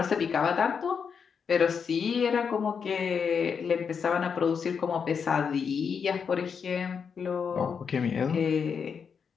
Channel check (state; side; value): quieter; right; 6.4 dB